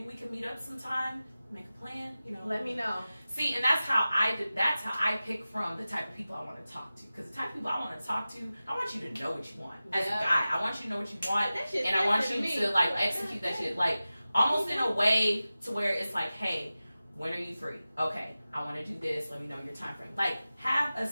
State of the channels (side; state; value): both; inverted; correlation -0.95